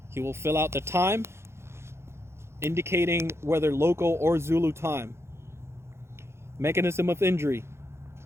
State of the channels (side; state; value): left; late; 0.13 ms